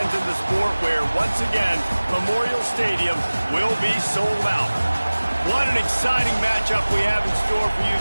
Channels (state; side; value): inverted; both; correlation -1.00